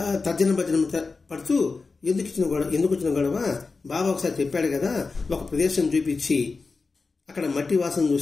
తర్జన పడుతూ ఎందుకు వచ్చిన గొడవ? బాబా ఒకసారి చెప్పాడు కదా, ఒక ప్రదేశం చూపించి అక్కడ మట్టి వాసన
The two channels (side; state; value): right; quieter; 4.2 dB